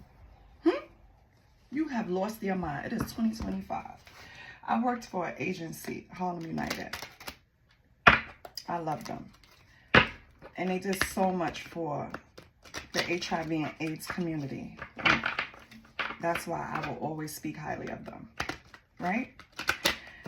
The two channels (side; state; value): both; identical; correlation 1.00